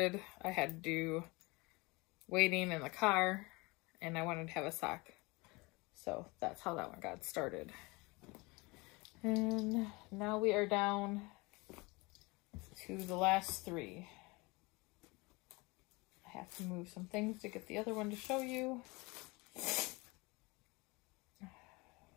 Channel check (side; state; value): right; quieter; 25.3 dB